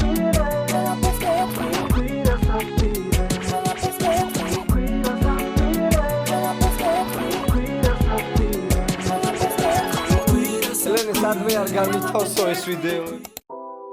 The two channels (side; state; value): both; identical; correlation 1.00